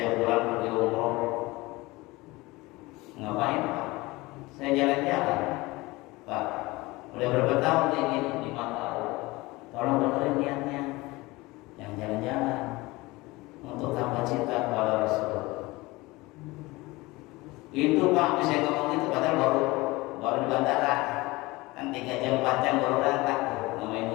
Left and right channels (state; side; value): quieter; right; 21.7 dB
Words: bulan pergi umroh. Ngapain Pak? Saya jalan-jalan Pak, udah berapa tahun kayak gini? 5 tahun. Tolong benerin niatnya, yang jalan-jalan untuk tambah cinta kepada Rasul. Itu Pak, bisa ngomong itu padahal baru di bandara kan 3 jam 4 jam baru berangkat tuh, namanya